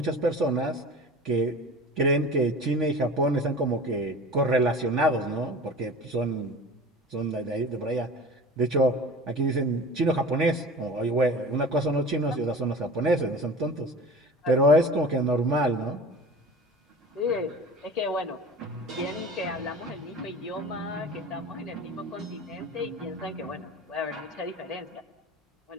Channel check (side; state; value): both; normal; correlation 0.38